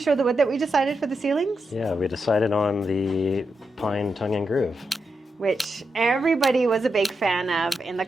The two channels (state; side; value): normal; both; correlation 0.86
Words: the wood that we decided for the ceilings? Yeah, we decided on the pine tongue and groove. Which everybody was a big fan of in the